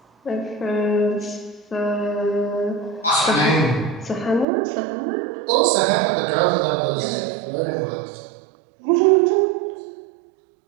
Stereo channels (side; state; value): left; drops out; at 4.5 s